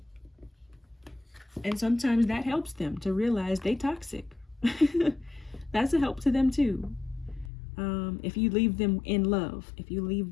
And sometimes that helps them to realize they toxic. That's a help to them too. If you leave them in love, if you leave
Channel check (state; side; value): drops out; right; at 7.5 s